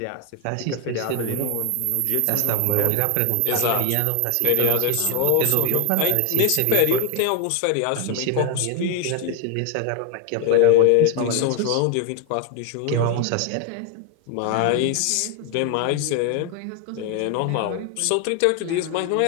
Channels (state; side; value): different; both; correlation 0.01